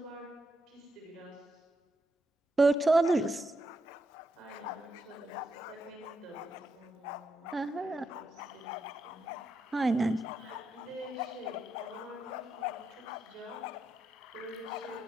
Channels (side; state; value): both; normal; correlation 0.83